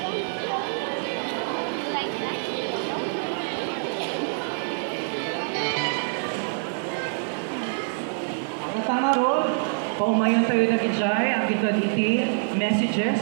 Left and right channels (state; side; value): silent; left; digital silence